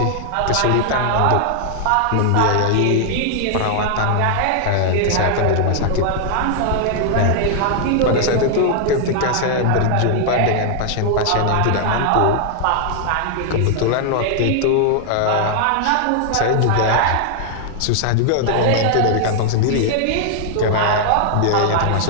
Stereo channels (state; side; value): different; both; correlation 0.00